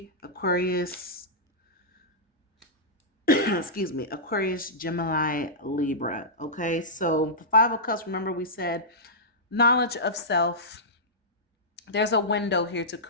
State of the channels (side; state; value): both; normal; correlation -0.13